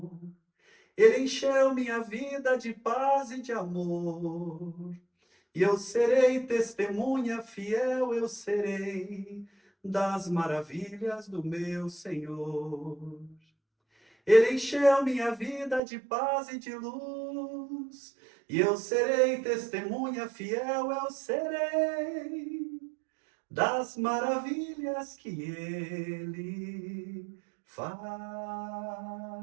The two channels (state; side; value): drops out; left; at 15.8 s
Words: Ele encheu minha vida de paz e de amor. E eu serei testemunha fiel, eu serei das maravilhas do meu Senhor. Ele encheu minha vida de paz e de luz. E eu serei testemunha fiel, eu serei das maravilhas que ele